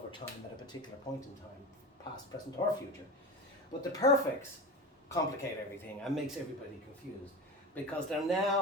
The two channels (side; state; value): both; normal; correlation 0.27